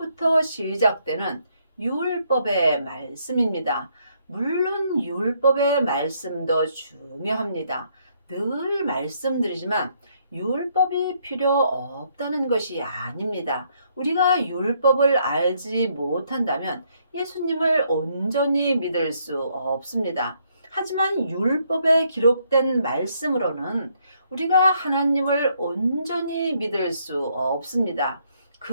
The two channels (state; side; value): inverted; both; correlation -0.71